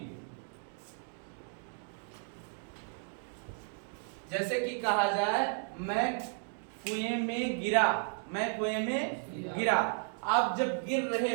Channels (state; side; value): silent; left; 55 dB below the other